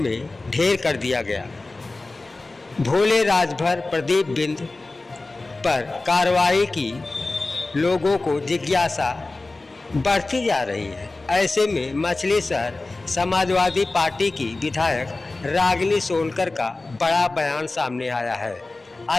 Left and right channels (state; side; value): quieter; right; 3.2 dB